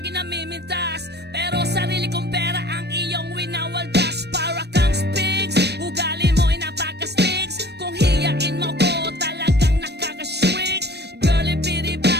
namimintas, pero sarili kong pera ang iyong winawaldas. Para kang spigs, ugali mo ay napaka-stigs. Kung hiyain mo ko, talagang nakaka-shrink. Girlie, pity,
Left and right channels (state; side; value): late; left; 0.49 ms